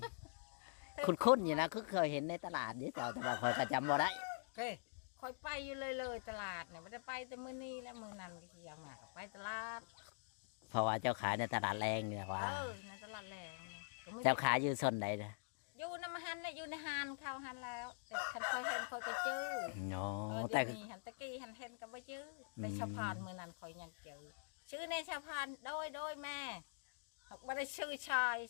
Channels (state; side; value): silent; right; digital silence